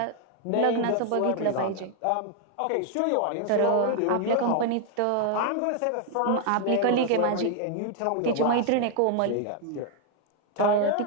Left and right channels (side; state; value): both; different; correlation 0.00